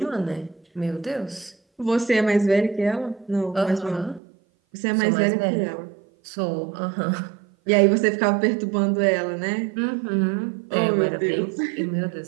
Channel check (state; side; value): drops out; left; at 4.2 s